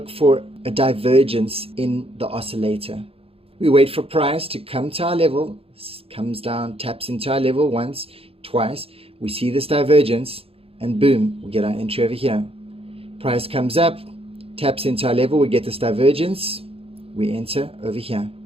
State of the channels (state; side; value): late; left; 0.28 ms